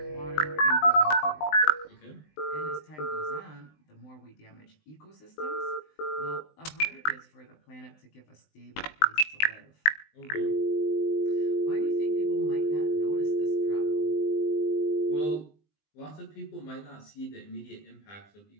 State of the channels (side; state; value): right; late; 20 ms